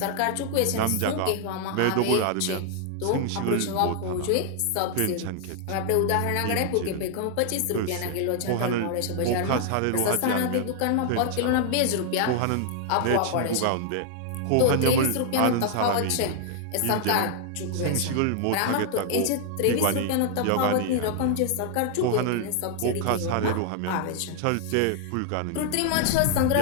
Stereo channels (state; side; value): different; both; correlation 0.00